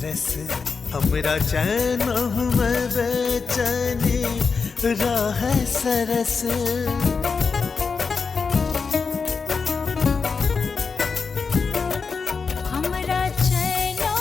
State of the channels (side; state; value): right; quieter; 5.1 dB